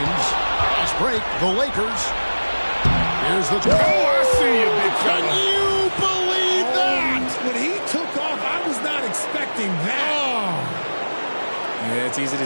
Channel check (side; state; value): both; inverted; correlation -1.00